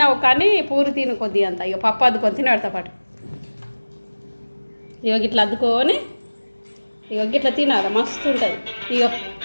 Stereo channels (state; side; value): inverted; both; correlation -1.00